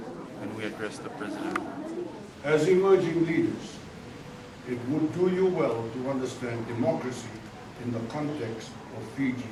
and we addressed the president. As emerging leaders, it would do you well to understand democracy in the context of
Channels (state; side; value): identical; both; correlation 1.00